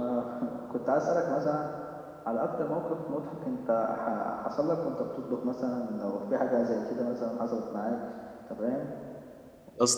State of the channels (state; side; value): identical; both; correlation 1.00